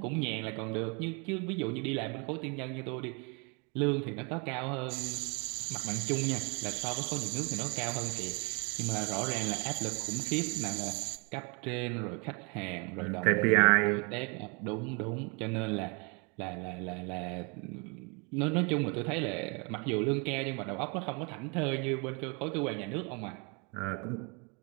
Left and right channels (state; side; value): quieter; left; 32.0 dB